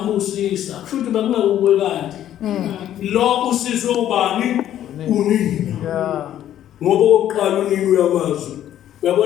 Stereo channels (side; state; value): right; quieter; 11.5 dB